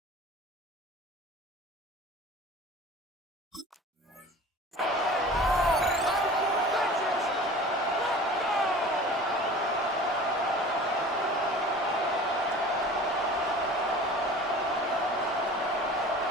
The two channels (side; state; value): both; normal; correlation 0.41